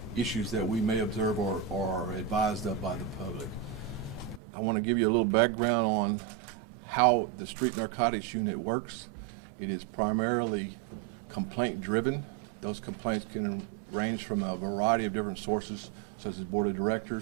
issues that we may observe or are advised of by the public. I want to give you a little background on how the Street Narcotics Unit works. It is primarily complaint-driven. Those complaints can range from a variety of different sources, such as Board of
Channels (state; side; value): drops out; left; at 4.4 s